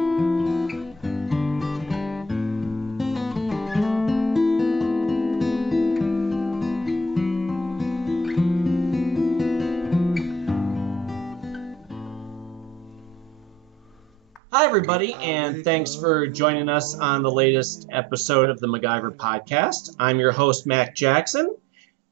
Hi, everybody, and thanks for joining us on the latest episode of the MacGyver podcast. I'm your host, Mac Jackson,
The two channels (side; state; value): left; drops out; at 14.4 s